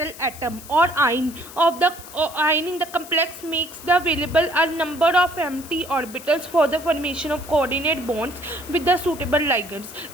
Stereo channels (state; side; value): noise; left; hiss, 16 dB below the sound